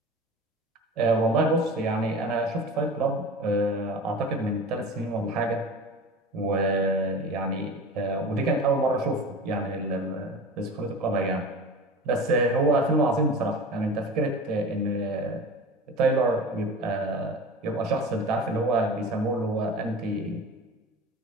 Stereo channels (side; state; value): both; normal; correlation 0.34